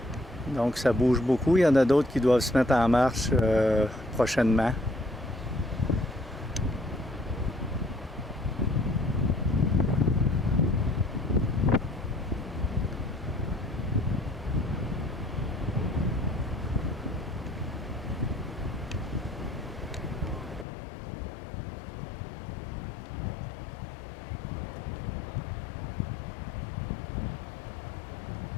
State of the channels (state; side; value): drops out; right; at 20.7 s